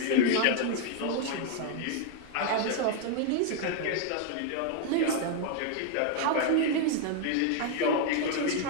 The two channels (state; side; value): different; both; correlation 0.00